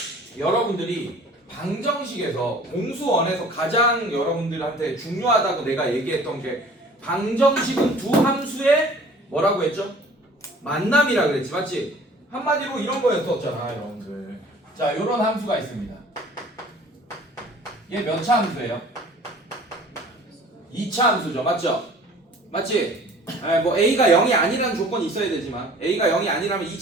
여러분들이 방정식에서 공수원에서 가장 여러분들한테 중요하다고 내가 얘기했던 게 방정식은 두 함수의 뭐라고 했죠? 만남이라 그랬지, 맞지? 한마디로 이런 거였었잖아, 여러분들. 자, 요런 함수가 있습니다. 얘 몇 차 함수예요? 2차 함수죠, 맞죠? 맞지? 뭐 A가 0이 아니라는 조건이 있어야 되지만 A가 0이 아니라면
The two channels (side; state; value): both; normal; correlation 0.49